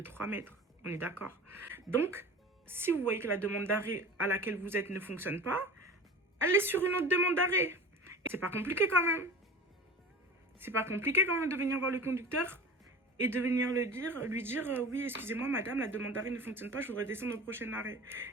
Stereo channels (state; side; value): normal; both; correlation 0.36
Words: mètres. On est d'accord. Donc, si vous voyez que la demande d'arrêt à laquelle vous êtes ne fonctionne pas, allez sur une autre demande d'arrêt. C'est pas compliqué quand même. C'est pas compliqué quand même de venir voir le conducteur et de venir lui dire oui, excusez-moi madame, la demande d'arrêt ne fonctionne pas, je voudrais descendre au prochain arrêt.